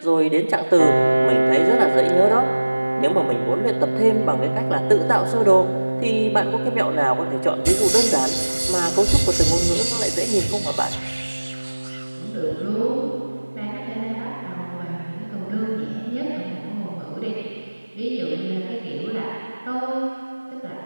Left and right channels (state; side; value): inverted; both; correlation -1.00